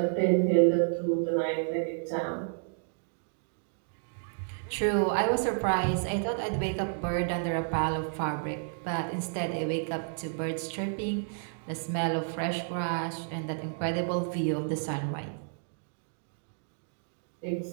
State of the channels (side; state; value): left; silent; digital silence